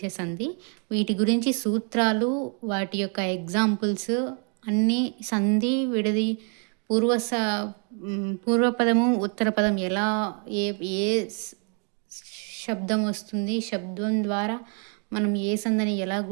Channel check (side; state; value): left; quieter; 39.5 dB